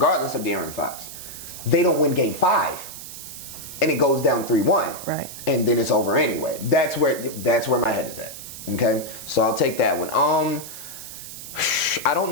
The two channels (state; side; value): noise; right; hiss, 12 dB below the sound